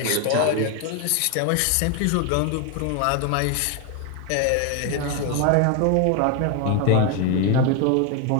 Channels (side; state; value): both; different; correlation 0.01